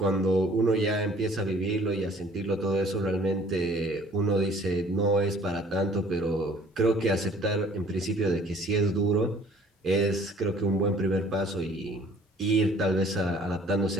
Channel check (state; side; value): normal; both; correlation 0.54